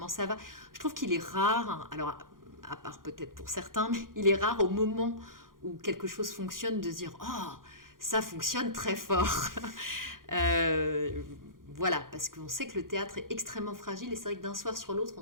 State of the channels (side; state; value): left; late; 0.90 ms